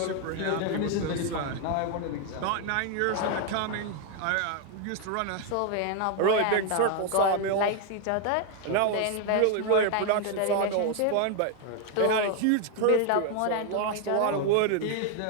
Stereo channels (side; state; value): both; different; correlation 0.00